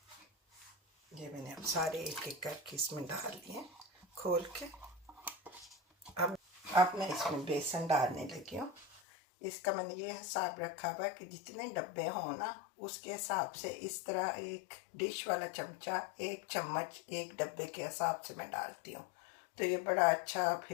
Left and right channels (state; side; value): drops out; right; at 9.0 s